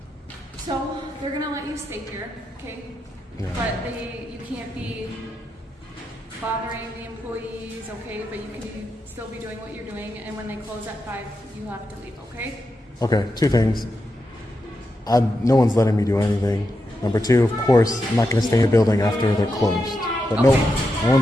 So they're gonna let you stay here, okay? Yeah. But you can't be bothering the employees, okay? But you can still be doing what you're doing, and when they close at 5, you have to leave, okay? Okay, 2 things. No one's letting me do anything. Number 2, of course, I'm not going to stay in the building after they're closed. But no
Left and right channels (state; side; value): normal; both; correlation 0.86